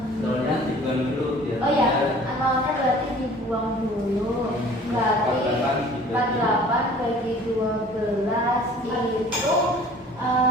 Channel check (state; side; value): normal; both; correlation 0.49